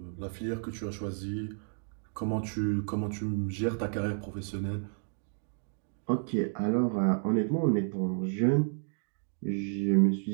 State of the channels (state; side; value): silent; left; 57 dB below the other